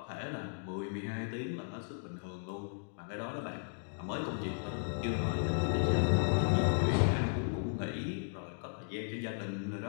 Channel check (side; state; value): right; silent; digital silence